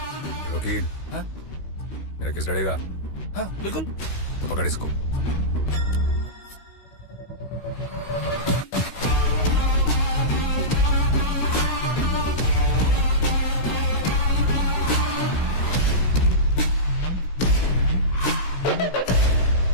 वकील। हाँ? मेरा केस लड़ेगा? हाँ बिल्कुल। तो पकड़ इसको।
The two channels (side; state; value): right; late; 16 ms